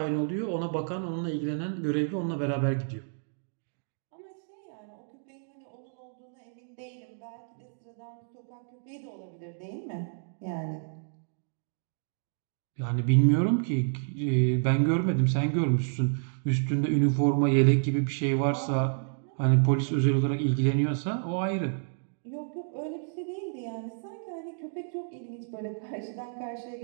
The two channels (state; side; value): silent; left; digital silence